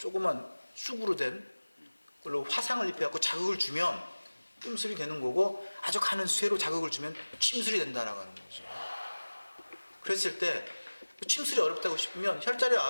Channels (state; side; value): inverted; both; correlation -1.00